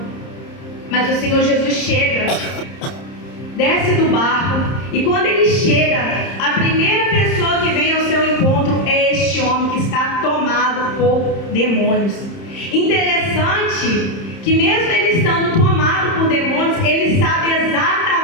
Mas o Senhor Jesus chega, desce do barco, e quando ele chega, a primeira pessoa que vem ao seu encontro é este homem que está tomado por demônios. Interessante que mesmo ele estando tomado por demônios, ele sabe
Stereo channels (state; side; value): late; right; 30 ms